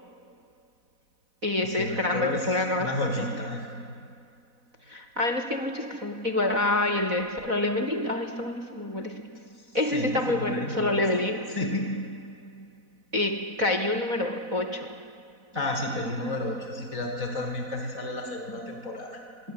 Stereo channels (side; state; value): left; late; 4.0 ms